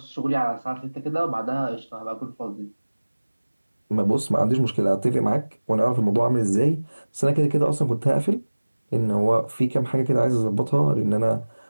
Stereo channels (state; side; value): inverted; both; correlation -1.00